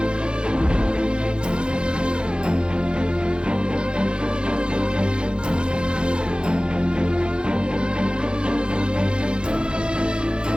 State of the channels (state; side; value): late; left; 0.051 ms